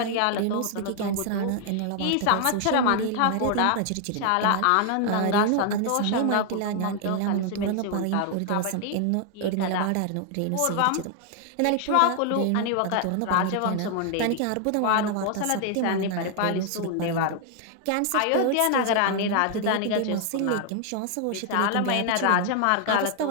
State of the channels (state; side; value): different; both; correlation 0.00